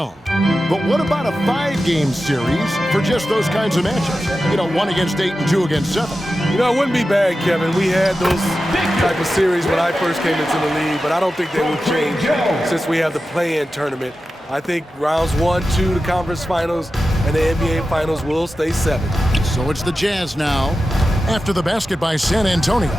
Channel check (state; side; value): normal; both; correlation 0.93